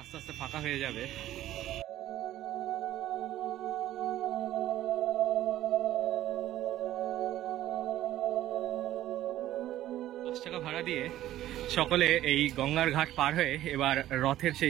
আস্তে আস্তে ফাঁকা হয়ে যাবে। 10 টাকা ভাড়া দিয়ে সকলে এই গঙ্গার ঘাট পার হয়ে এবার রথের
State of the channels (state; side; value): quieter; left; 13.6 dB